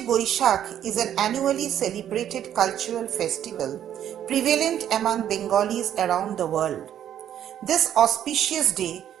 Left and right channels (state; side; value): quieter; left; 10.4 dB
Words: Boishakh is an annually celebrated cultural festival prevalent among Bengalis around the world. This auspicious day